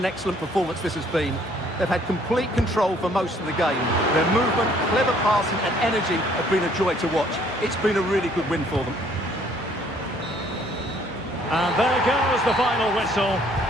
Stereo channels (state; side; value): normal; both; correlation 0.62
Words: excellent performance this has been. They've had complete control for most of the game. Their movement, clever passing and energy have been a joy to watch. It's been a really good win for them. And there goes the final whistle.